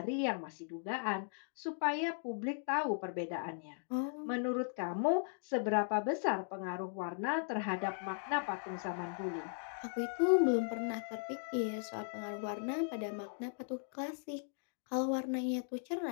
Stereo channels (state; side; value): silent; right; digital silence